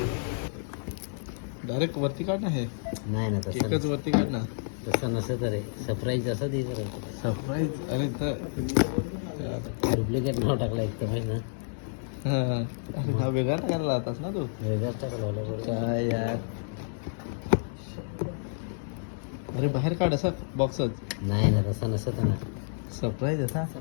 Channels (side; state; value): right; silent; digital silence